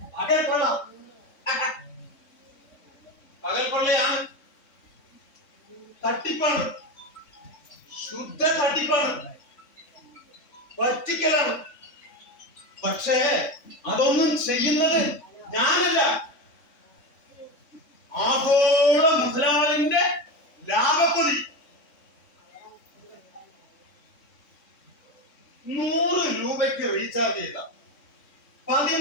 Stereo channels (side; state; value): right; late; 3.6 ms